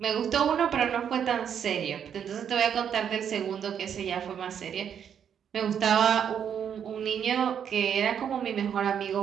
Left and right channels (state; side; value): quieter; left; 8.3 dB